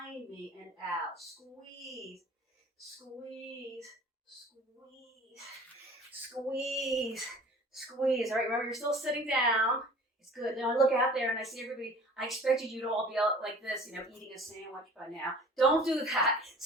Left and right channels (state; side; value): normal; both; correlation 0.46